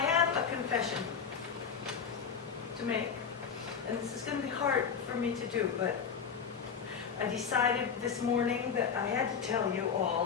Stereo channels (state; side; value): quieter; right; 6.6 dB